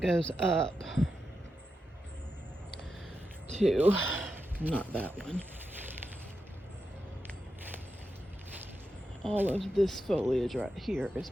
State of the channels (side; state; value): both; normal; correlation 0.88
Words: goes up to, not that one. All of this foliage right here is